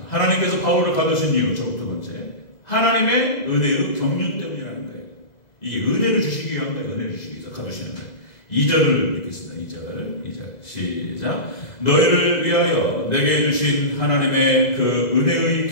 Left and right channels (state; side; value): late; right; 2.0 ms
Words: 하나님께서 바울을 가두신 이유, 두 번째. 하나님의 은혜의 경륜 때문이라는 거예요. 이게 은혜를 주시기 위한 거예요. 은혜를 주시기 위해서 가두시는 거예요. 2절을 읽겠습니다. 2절 시작. 너희를 위하여 내게 주신 하나님의 그 은혜의